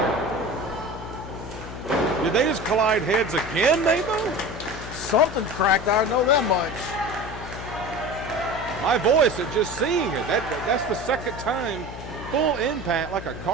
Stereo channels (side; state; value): left; noise; hum, 11 dB below the sound